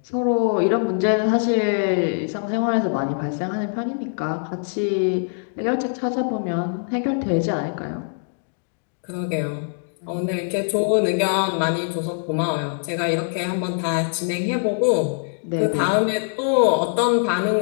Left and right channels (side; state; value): right; silent; digital silence